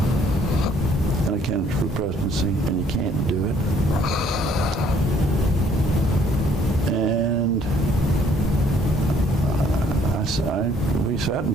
and a candidate for the presidency, and you can't do it. And we sat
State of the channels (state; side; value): normal; both; correlation 0.62